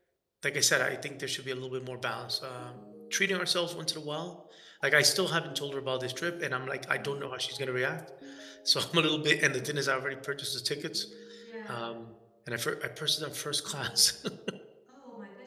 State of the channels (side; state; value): both; identical; correlation 1.00